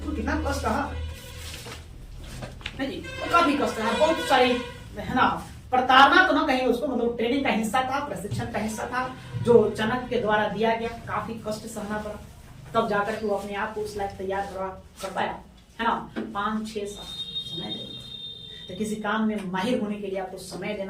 कितना कष्ट रहा जी, काफी कष्ट रहा, बहुत सारी है ना, प्रताड़ना तो ना कहीं उसको, मतलब ट्रेनिंग का हिस्सा था, प्रशिक्षण का हिस्सा था जो चाणक्य के द्वारा दिया गया, काफी कष्ट सहना पड़ा, तब जाकर के वो अपने आप को उस लायक तैयार कर पाया, है ना। 5-6 साल समय देना, तो किसी काम में माहिर होने के लिए आपको समय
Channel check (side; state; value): both; identical; correlation 1.00